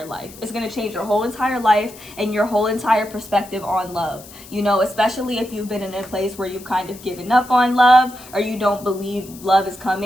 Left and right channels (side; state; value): left; noise; hiss, 19 dB below the sound